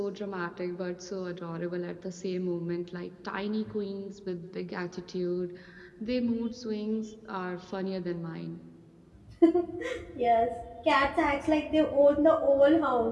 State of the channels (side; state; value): both; identical; correlation 1.00